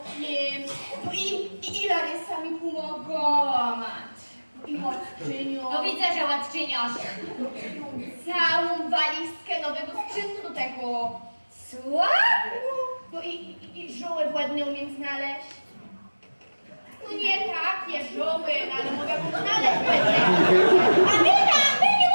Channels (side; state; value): both; inverted; correlation -1.00